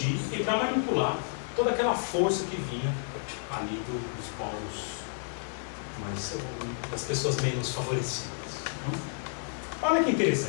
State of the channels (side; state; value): right; silent; digital silence